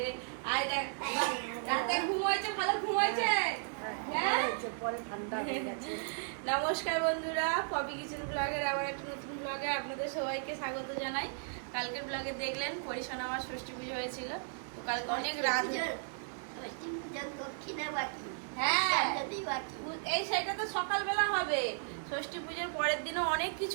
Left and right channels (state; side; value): silent; left; digital silence